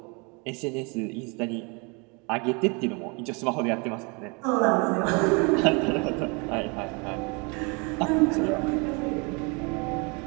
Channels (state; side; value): quieter; left; 31.2 dB